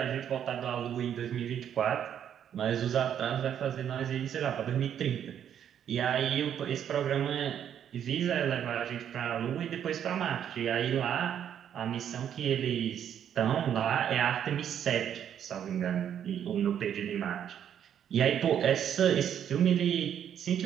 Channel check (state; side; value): quieter; left; 9.3 dB